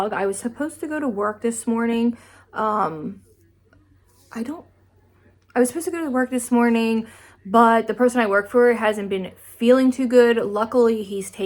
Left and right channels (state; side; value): identical; both; correlation 1.00